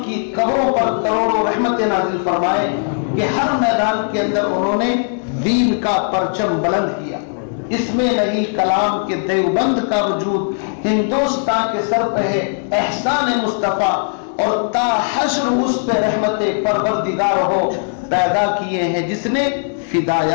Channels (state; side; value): silent; right; 67 dB below the other